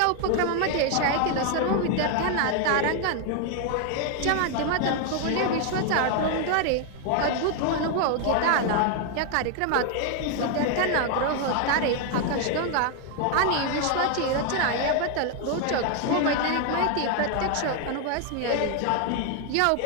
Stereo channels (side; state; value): both; different; correlation 0.00